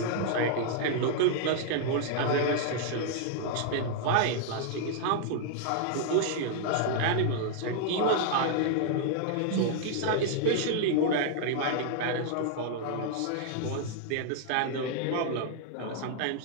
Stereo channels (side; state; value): both; different; correlation -0.01